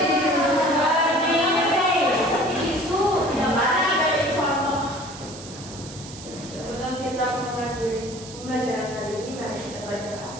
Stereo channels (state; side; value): noise; right; hiss, 15 dB below the sound